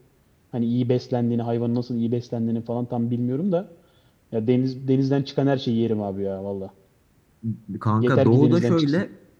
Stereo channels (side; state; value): both; identical; correlation 1.00